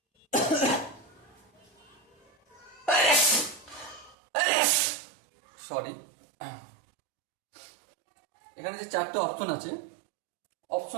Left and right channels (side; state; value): left; drops out; at 4.2 s